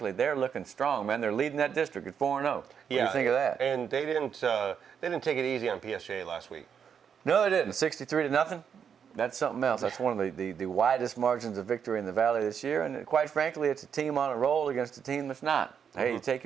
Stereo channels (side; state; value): left; quieter; 7.5 dB